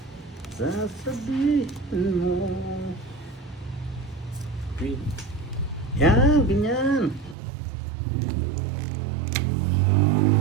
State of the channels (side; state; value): left; drops out; at 7.4 s